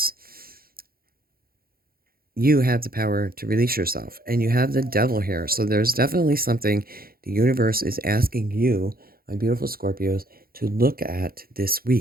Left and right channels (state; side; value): late; left; 0.43 ms